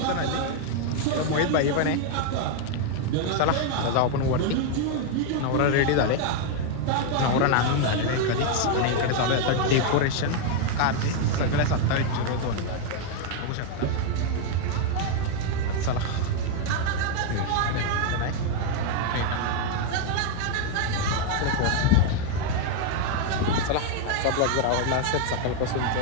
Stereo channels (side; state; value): both; different; correlation 0.00